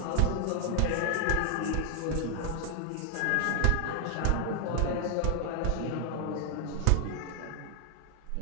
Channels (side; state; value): both; different; correlation 0.00